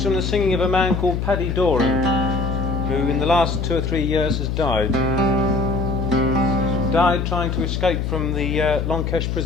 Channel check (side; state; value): left; noise; hum, 1 dB below the sound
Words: from the singing of a man called Paddy Doran, who in the last 2 or 3 years has died. Died trying to escape from the Longkesh